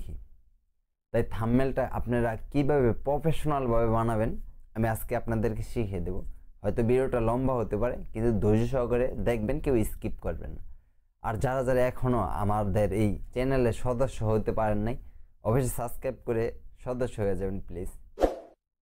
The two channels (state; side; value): identical; both; correlation 1.00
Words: তাই থাম্বনেলটা আপনারা কীভাবে প্রফেশনালভাবে বানাবেন আমি আজকে আপনাদেরকে শিখিয়ে দেবো। হয়তো ভিডিওটা লম্বা হতে পারে, কিন্তু ধৈর্য সহকারে দেখবেন, কেউ স্কিপ করবেন না। আর যারা যারা এখনও আমাদের এই চ্যানেলের সদস্য হতে পারেন নাই, অবশ্যই সাবস্ক্রাইব করে সদস্য হয়ে যাবেন প্লিজ।